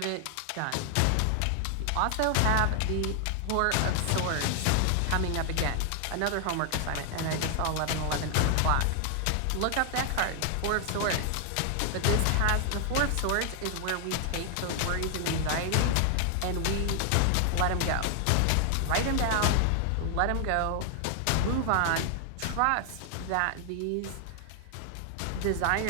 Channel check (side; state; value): both; different; correlation 0.00